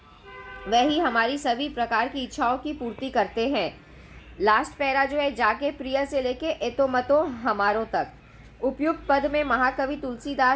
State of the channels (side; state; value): both; identical; correlation 1.00